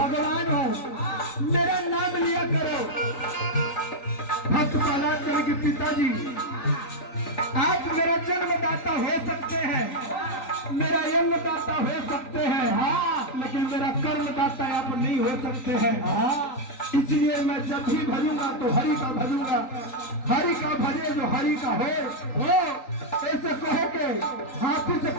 हूँ, मेरा नाम लिया करो। भक्त प्रहलाद कहे कि पिताजी आप मेरा जन्मदाता हो सकते हैं, मेरा जन्मदाता हो सकते हैं, हाँ, लेकिन मेरा कर्मदाता आप नहीं हो सकते हैं। हाँ, इसलिए मैं जब भी भजूंगा तो हरि का भजूंगा। हरि का भजे जो हरि का हो ऐसे कहो के हाथी से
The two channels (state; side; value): late; right; 3.9 ms